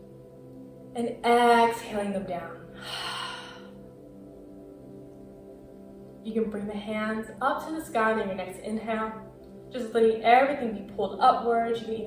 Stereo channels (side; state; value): both; identical; correlation 1.00